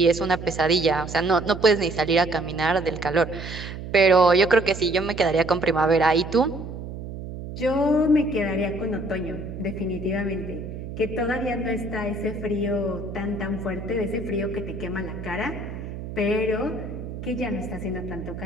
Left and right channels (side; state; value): right; noise; hum, 9 dB below the sound